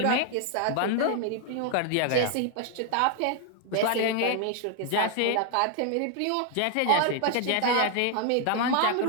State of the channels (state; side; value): different; both; correlation 0.00